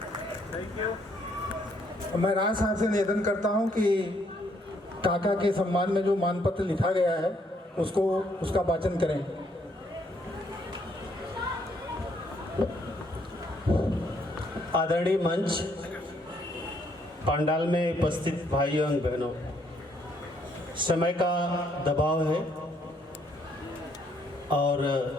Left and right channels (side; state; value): both; normal; correlation 0.69